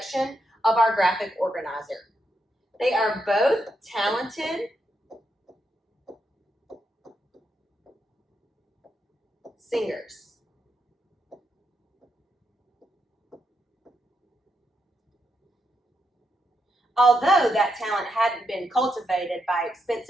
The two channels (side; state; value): both; normal; correlation 0.82